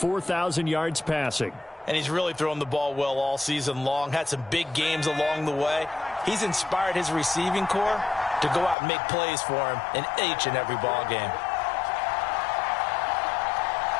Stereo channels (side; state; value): right; drops out; at 8.8 s